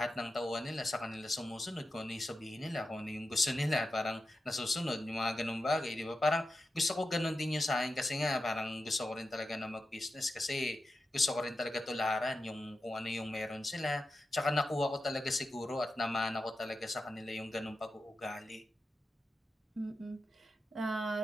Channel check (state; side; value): normal; both; correlation 0.91